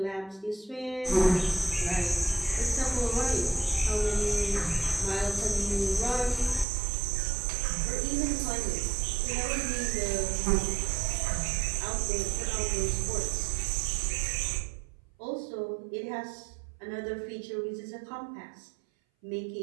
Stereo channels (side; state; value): left; drops out; at 6.7 s